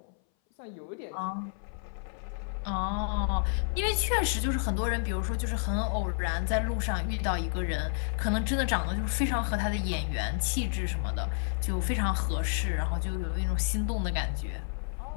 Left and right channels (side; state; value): right; silent; 58 dB below the other